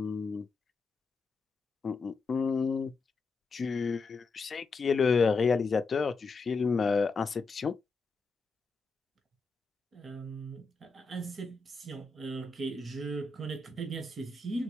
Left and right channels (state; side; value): quieter; right; 4.1 dB